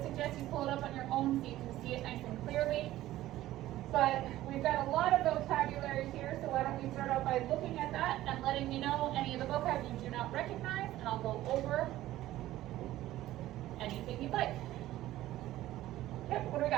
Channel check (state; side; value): quieter; left; 15.0 dB